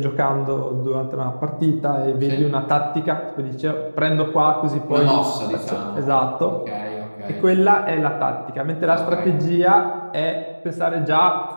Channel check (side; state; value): both; inverted; correlation -1.00